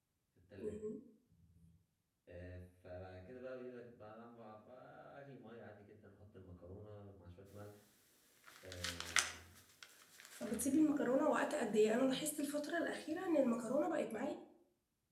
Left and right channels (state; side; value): identical; both; correlation 1.00